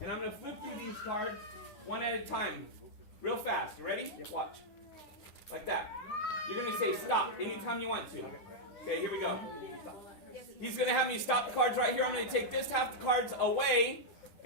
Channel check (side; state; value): right; late; 10 ms